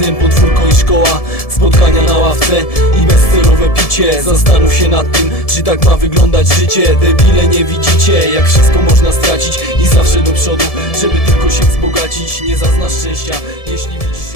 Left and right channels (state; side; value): late; right; 1.7 ms